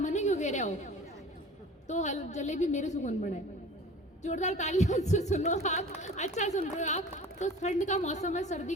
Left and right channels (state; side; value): normal; both; correlation 0.41